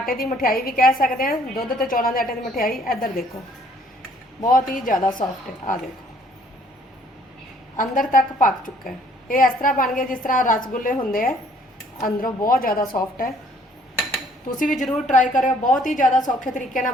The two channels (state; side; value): normal; both; correlation 0.60